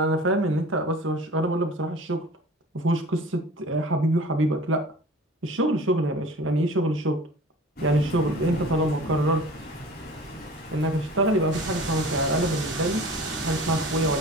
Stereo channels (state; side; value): normal; both; correlation 0.42